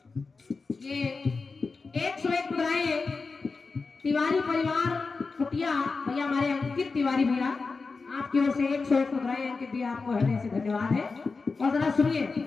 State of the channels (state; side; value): quieter; right; 4.3 dB